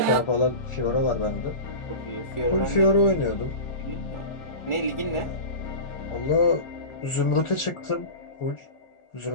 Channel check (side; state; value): right; late; 1.4 ms